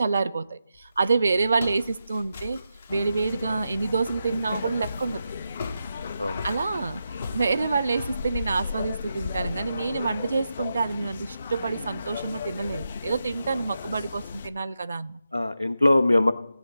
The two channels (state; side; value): inverted; both; correlation -0.88